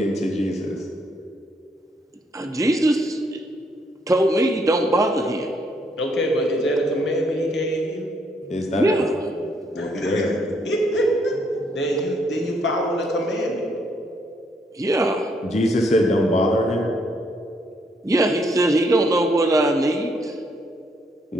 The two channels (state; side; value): normal; both; correlation 0.71